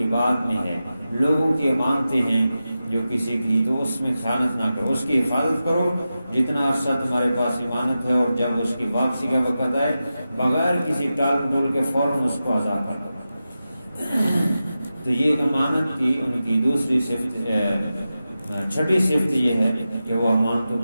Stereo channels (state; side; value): inverted; both; correlation -0.92